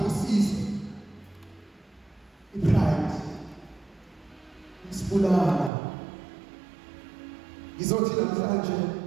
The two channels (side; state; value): left; drops out; at 5.7 s